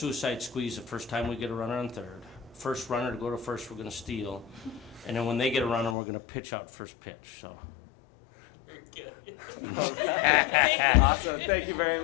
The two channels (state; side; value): drops out; right; at 6.0 s